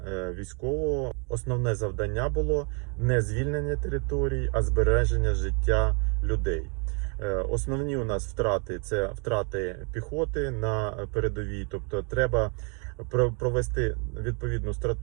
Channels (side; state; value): left; quieter; 37.5 dB